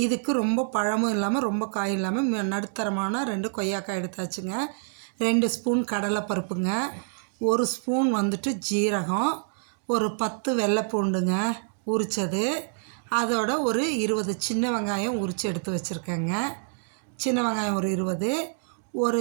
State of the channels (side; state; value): left; silent; 60 dB below the other